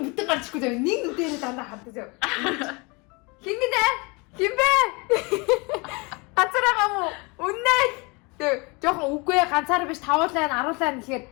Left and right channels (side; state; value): right; quieter; 28.5 dB